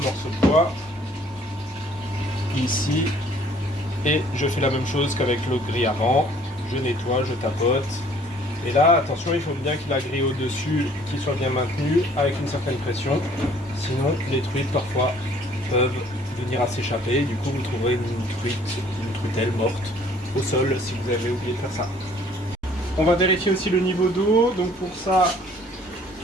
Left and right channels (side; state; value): both; normal; correlation 0.57